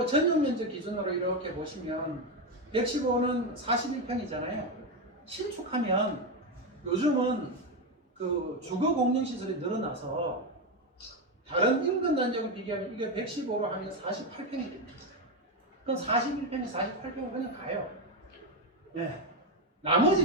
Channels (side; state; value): both; normal; correlation 0.10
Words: 전용 면적 기준으로 이렇게 보시면 115는 41평이잖아요. 신축하면 요즘은 그 주거 공용시설이 늘어나서 다른 인근 단지하고 비교하면 이게 115로 하면 48평이 됩니다. 그럼 41평이 48평은 그냥 가요. 네.